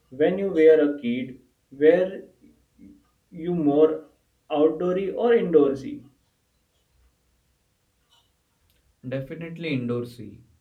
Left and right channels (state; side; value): identical; both; correlation 1.00